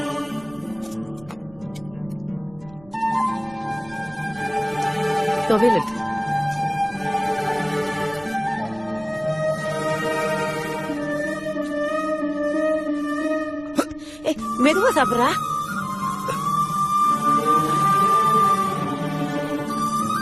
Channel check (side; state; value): right; noise; rumble, 23 dB below the sound